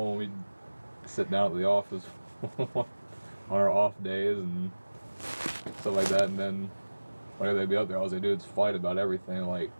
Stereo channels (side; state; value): both; inverted; correlation -1.00